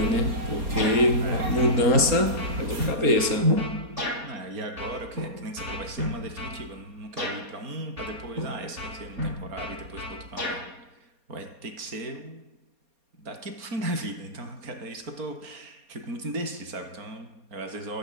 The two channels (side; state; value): left; late; 4.2 ms